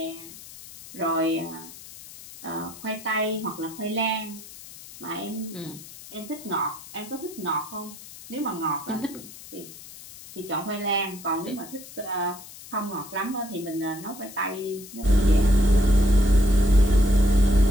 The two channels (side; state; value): left; noise; hiss, 17 dB below the sound